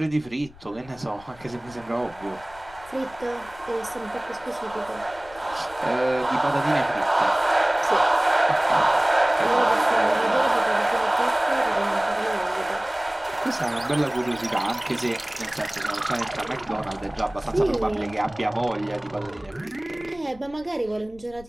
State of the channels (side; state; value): left; noise; rumble, 22 dB below the sound